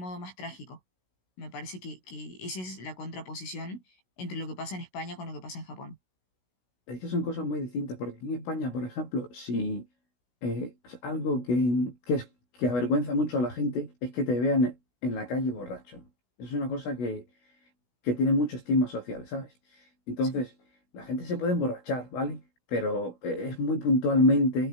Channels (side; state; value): right; late; 16 ms